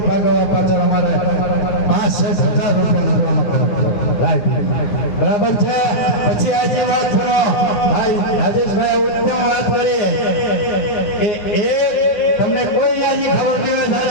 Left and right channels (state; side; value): late; right; 9.6 ms